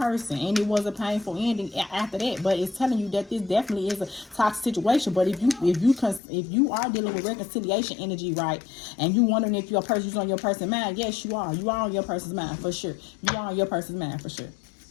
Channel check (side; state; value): right; drops out; at 6.2 s